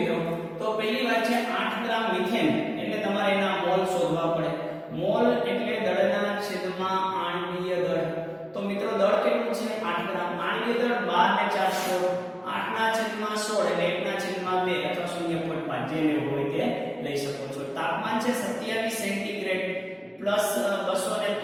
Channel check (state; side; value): identical; both; correlation 1.00